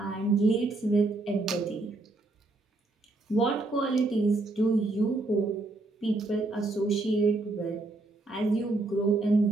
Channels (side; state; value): left; quieter; 3.0 dB